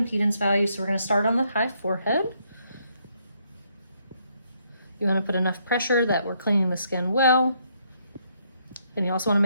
value. So we're going to start on the high forehead. You want to put enough pressure that we're cleaning the skin well. And you also want to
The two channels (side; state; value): both; inverted; correlation -0.73